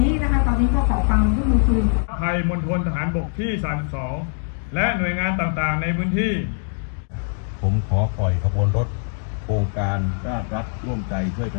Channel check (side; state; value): right; silent; digital silence